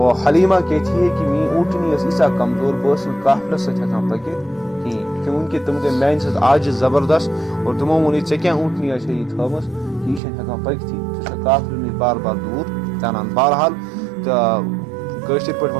حلیمہ کہتی ہے کہ می اونٹنی ایسا کمزور بس قافلس ست ہیکان پکت کہیں، کیونکہ تم گئی میانہ سۭتۍ آج زبردست. اور تمو وون ژے کیا اونٹنی یہ تھومس یہ ہیکان پکتھی، ژٕ قافلہ نش بار بار دور ژانان. بہرحال کٲشِر پٲٹھۍ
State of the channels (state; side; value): drops out; left; at 10.2 s